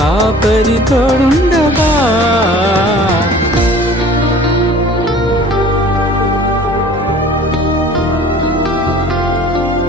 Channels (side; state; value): both; normal; correlation 0.47